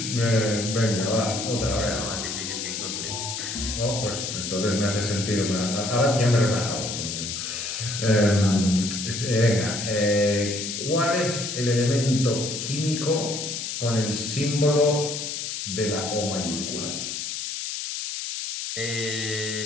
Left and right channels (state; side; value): noise; left; hiss, 4 dB below the sound